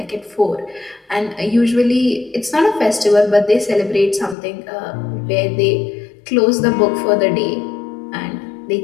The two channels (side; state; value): right; drops out; at 4.4 s